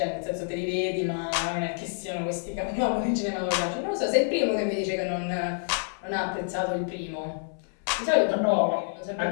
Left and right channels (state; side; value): silent; right; 60 dB below the other